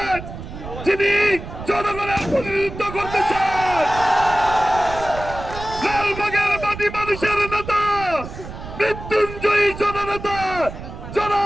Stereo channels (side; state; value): right; noise; rumble, 11 dB below the sound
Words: যিনি জনগণের প্রতিনিধিত্ব করতেছেন, লালবাগের মাটি মানুষের নেতা, মৃত্যুঞ্জয়ী জননেতা